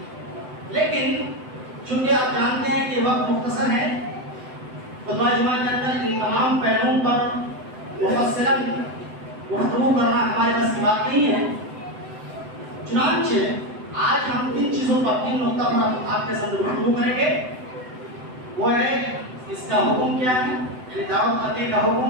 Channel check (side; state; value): left; late; 7.9 ms